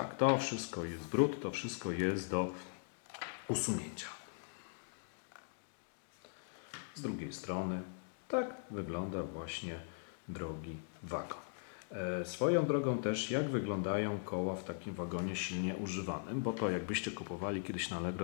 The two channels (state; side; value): silent; right; digital silence